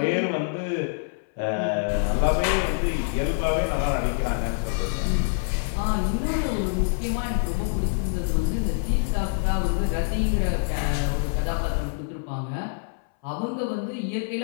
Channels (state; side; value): silent; right; 61 dB below the other